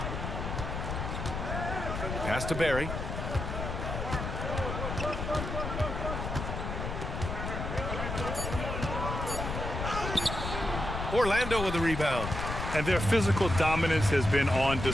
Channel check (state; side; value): noise; left; rumble, 4 dB below the sound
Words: Pass to Barry. Orlando with the rebound. And their physical dominance has been on